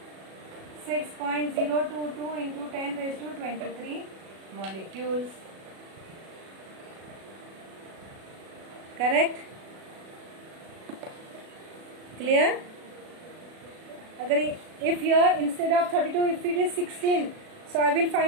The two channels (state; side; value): late; left; 37 ms